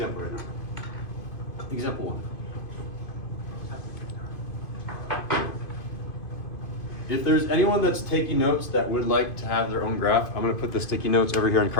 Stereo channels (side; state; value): right; late; 2.5 ms